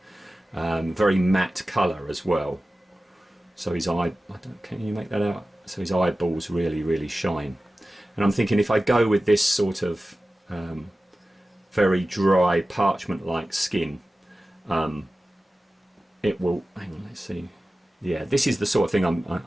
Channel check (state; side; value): normal; both; correlation 0.95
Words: Very matte colour as well. So his eye, can you make that out? So his eyeballs really, really shine. And I'm thinking, if I go with this sort of very dry parchment-like skin, it will, hang on, let's see. Yeah, this is the sort of thing